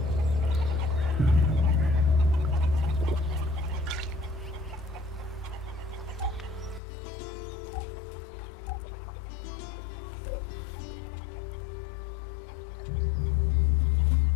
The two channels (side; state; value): right; drops out; at 6.8 s